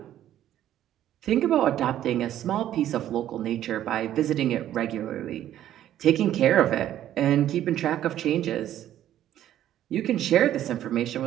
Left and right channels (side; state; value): left; quieter; 11.9 dB